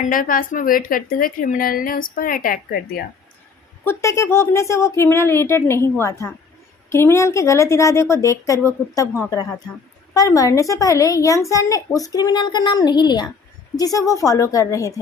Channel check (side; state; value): right; quieter; 5.1 dB